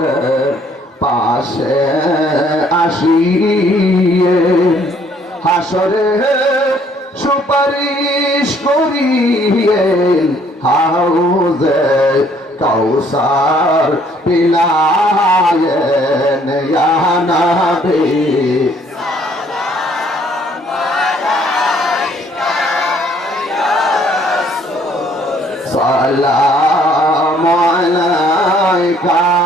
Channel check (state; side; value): normal; both; correlation 0.63